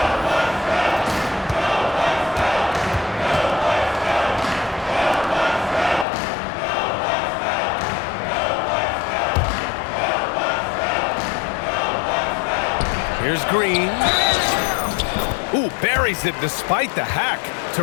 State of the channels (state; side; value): drops out; right; at 6.1 s